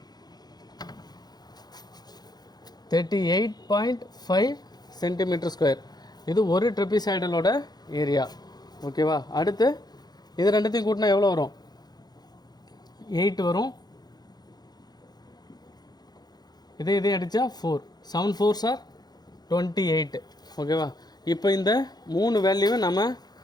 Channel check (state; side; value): late; right; 0.19 ms